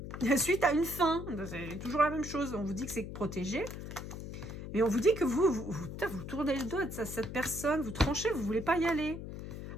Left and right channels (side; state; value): left; noise; hum, 9 dB below the sound